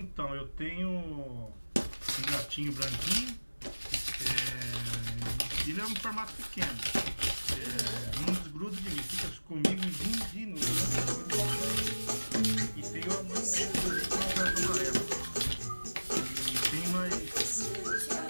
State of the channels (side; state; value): both; inverted; correlation -1.00